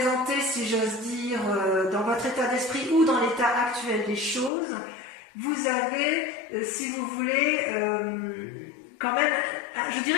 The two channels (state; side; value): drops out; right; at 4.5 s